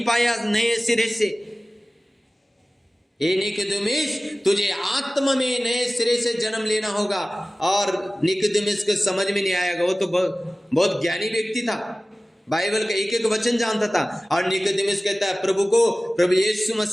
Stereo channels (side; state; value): both; normal; correlation 0.97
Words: पाया नए सिरे से। ए निकोदेमुस, तुझे आत्मा में नए सिरे से जन्म लेना होगा। और निकोदेमुस को समझ में नहीं आएगा, वो तो बहुत ज्ञानी व्यक्ति था, बाइबल का एक एक वचन जानता था। और निकोदेमुस कहता है प्रभु को, प्रभु यीशु